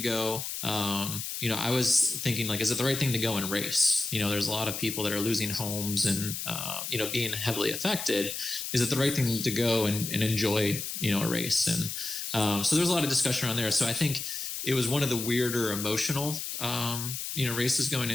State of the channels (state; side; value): noise; left; hiss, 5 dB below the sound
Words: I was thinking like, is it the right thing to go and race? There's a lot of people that are losing homes and, being heavily affected. Is it the right thing to go and enjoy, a race? And, so there's a lot of discussion around there. So I think it was one of the weirder emotional, races going